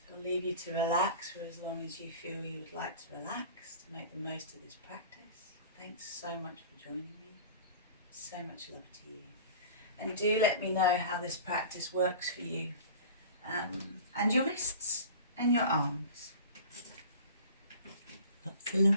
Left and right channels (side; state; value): both; inverted; correlation -0.40